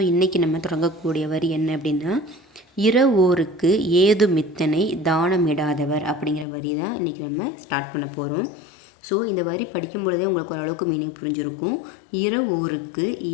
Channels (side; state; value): right; drops out; at 6.5 s